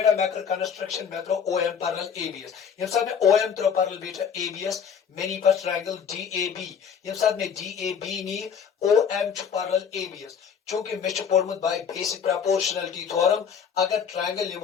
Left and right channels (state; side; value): quieter; right; 7.1 dB